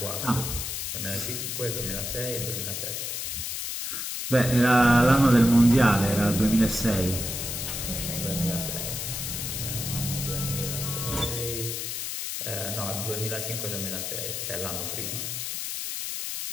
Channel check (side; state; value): left; noise; hiss, 4 dB below the sound